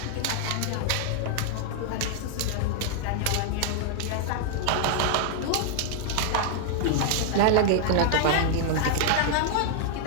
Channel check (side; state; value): both; different; correlation 0.00